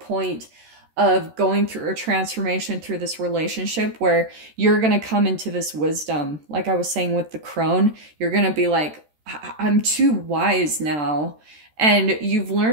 of going through a transformation through this relationship where you're going to come into this wisdom. Like I was saying with the crone, you're going to be like, I'm too wise now. And you've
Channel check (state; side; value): late; left; 13 ms